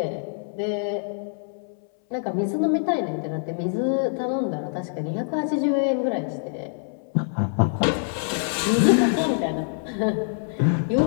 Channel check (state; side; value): silent; right; 62 dB below the other